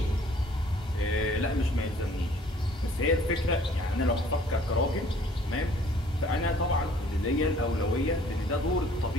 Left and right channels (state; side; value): normal; both; correlation 0.57